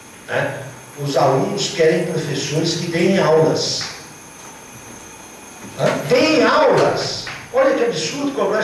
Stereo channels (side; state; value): both; identical; correlation 1.00